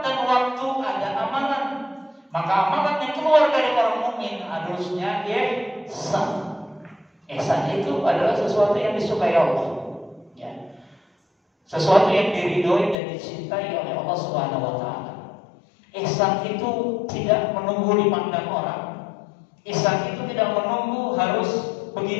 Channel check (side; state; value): right; drops out; at 13.0 s